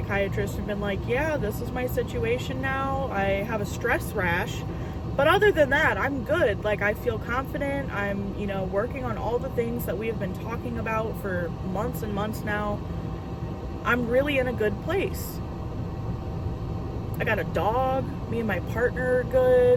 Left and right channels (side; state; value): both; identical; correlation 1.00